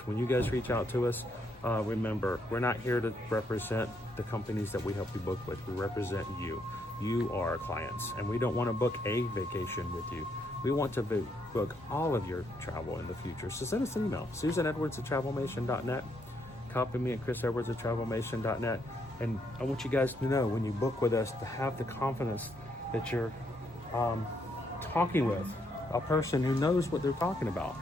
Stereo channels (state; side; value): normal; both; correlation 0.75